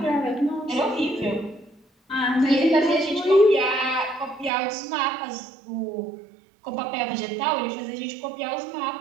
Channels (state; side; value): drops out; left; at 4.5 s